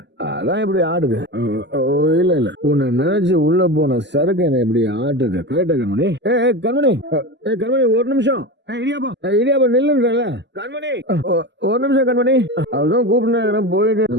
அதான் இப்படி ஆடுது. இல்ல இல்ல, உன்னை நினைச்சு உள்ள போன சரக்கு என்ன இப்படி ஆட்டுது. கரெக்டா கண்மணி? கண்மணி, கண்மணி ஒரு நிமிஷம். இடியாப்பா நில்லுன்றல கண்மணி, ஒரு நிமிஷம் கண்மணி. அதுதான் கூப்பிட்டு போயிட்டு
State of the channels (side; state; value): left; late; 0.51 ms